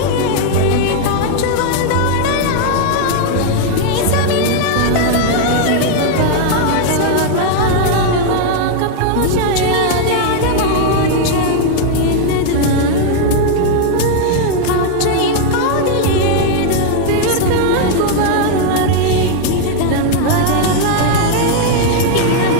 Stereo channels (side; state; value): both; different; correlation 0.00